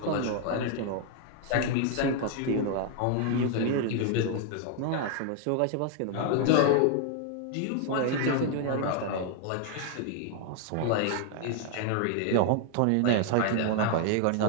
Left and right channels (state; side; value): different; both; correlation 0.00